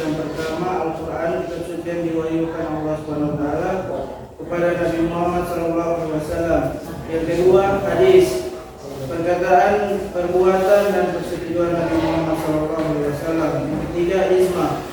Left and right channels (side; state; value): both; identical; correlation 1.00